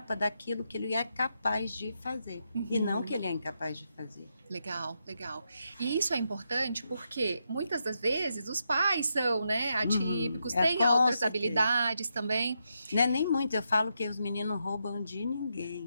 daquilo que ele é capaz de fazer, e não que ele é incapaz de fazer. Legal, legal. E isso é importante porque muitas das vezes os pais são, né, atípicos, têm com outras certeza. habilidades também. Não é nem muito, eu falo que os meninos roubam de ninguém.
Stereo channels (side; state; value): both; inverted; correlation -0.83